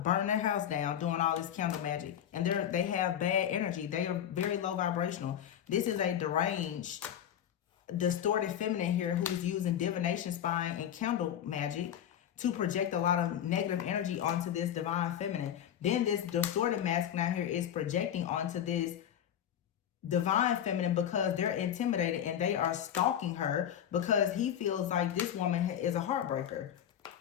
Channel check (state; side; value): quieter; right; 9.9 dB